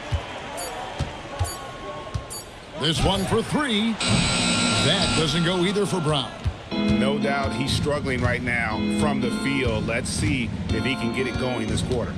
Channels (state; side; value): identical; both; correlation 1.00